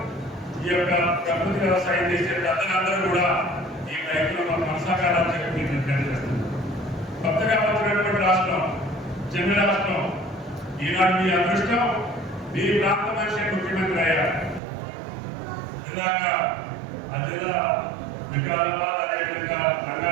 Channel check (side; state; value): left; drops out; at 14.6 s